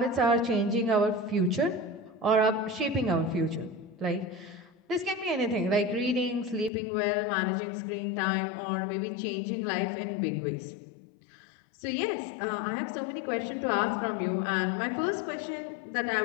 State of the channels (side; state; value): right; drops out; at 6.7 s